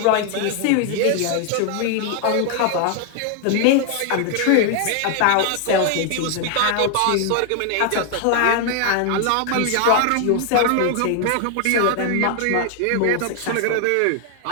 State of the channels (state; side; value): different; both; correlation 0.00